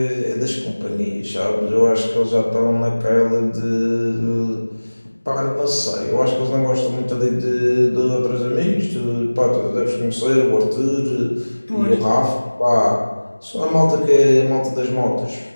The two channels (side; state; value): both; inverted; correlation -1.00